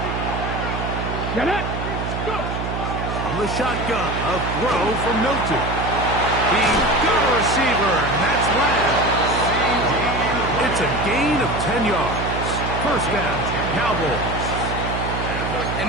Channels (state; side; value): noise; right; hum, 4 dB below the sound